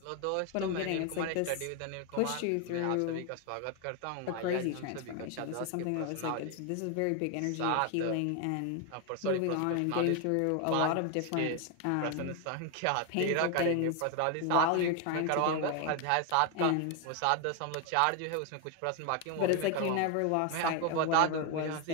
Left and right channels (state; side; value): different; both; correlation 0.01